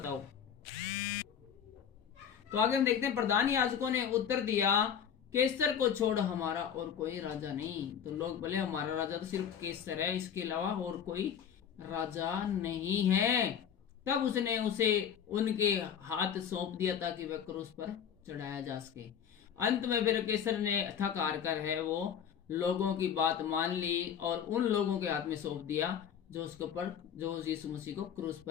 तो आगे हम देखते हैं, प्रधान याजकों ने उत्तर दिया, केसर को छोड़ हमारा और कोई राजा नहीं। तो लोग बोले, हमारा राजा तो सिर्फ केसर है, इसके अलावा और कोई राजा नहीं है। तब उसने उसे उनके हाथ सौंप दिया ताकि वह क्रूस पर चढ़ाया जा सके। अंत में फिर केसर ने थक हार कर है वो लोगों की बात मान ली और उन लोगों के हाथ में सौंप दिया जो यीशु मसीह को क्रूस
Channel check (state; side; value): quieter; right; 8.3 dB